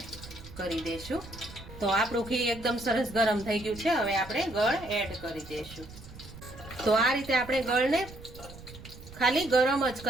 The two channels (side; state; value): right; noise; rumble, 16 dB below the sound